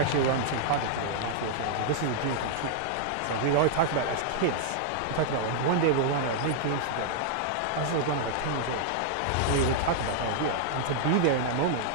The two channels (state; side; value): different; both; correlation -0.01